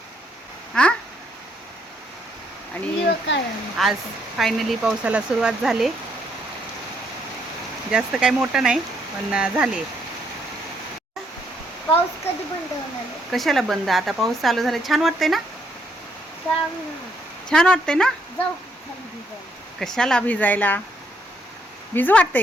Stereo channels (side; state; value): both; normal; correlation 0.72